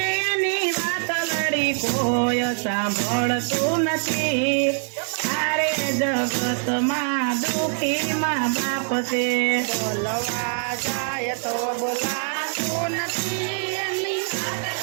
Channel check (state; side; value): silent; left; 63 dB below the other